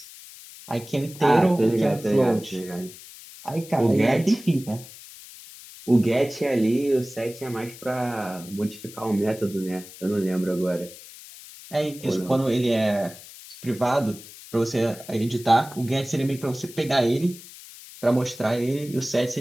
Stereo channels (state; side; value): noise; left; hiss, 17 dB below the sound